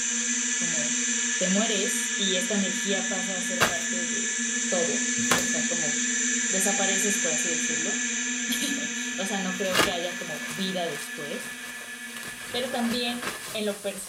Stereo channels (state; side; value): identical; both; correlation 1.00